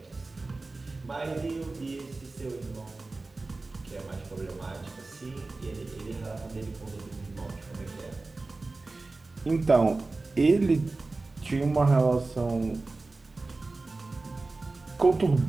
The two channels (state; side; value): quieter; left; 3.4 dB